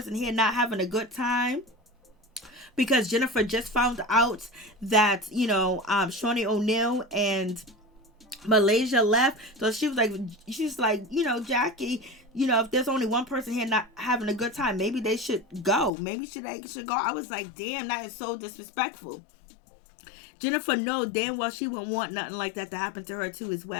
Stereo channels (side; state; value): right; drops out; at 15.9 s